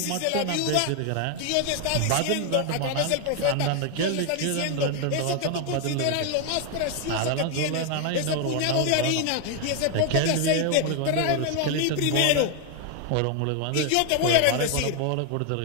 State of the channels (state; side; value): different; both; correlation 0.00